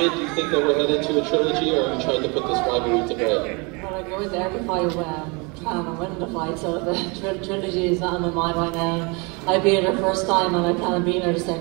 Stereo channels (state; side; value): quieter; left; 29.9 dB